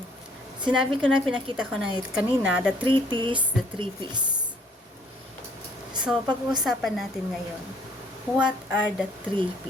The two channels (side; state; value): both; normal; correlation 0.61